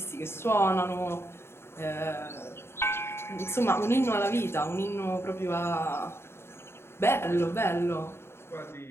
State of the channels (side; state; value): right; late; 0.12 ms